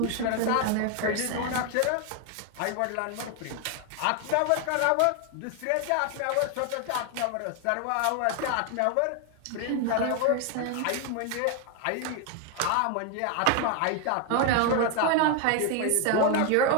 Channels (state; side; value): different; both; correlation 0.01